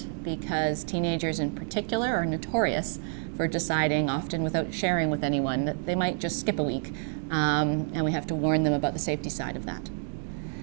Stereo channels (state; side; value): silent; left; 59 dB below the other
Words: because teenagers in particular are notorious for deciding, often without sharing with anyone, that they might just skip a week, and we have to warn them about the safety side of that.